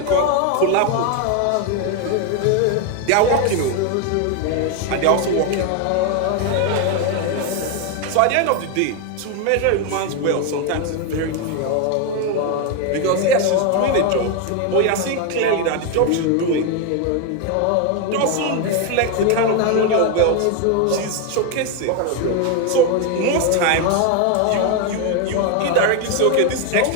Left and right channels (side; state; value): both; different; correlation 0.01